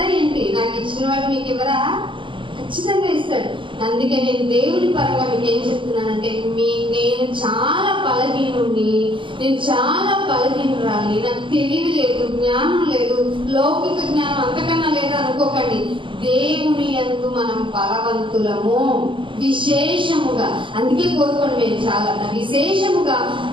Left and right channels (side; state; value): left; late; 0.24 ms